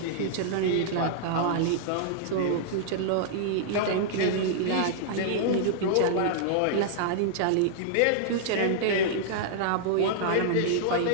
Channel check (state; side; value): different; both; correlation -0.01